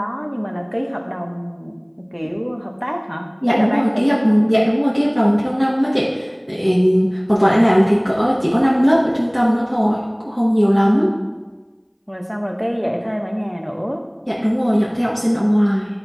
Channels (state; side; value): identical; both; correlation 1.00